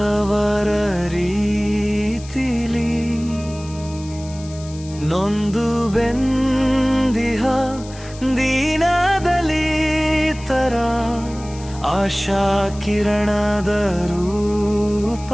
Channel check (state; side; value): noise; left; hiss, 19 dB below the sound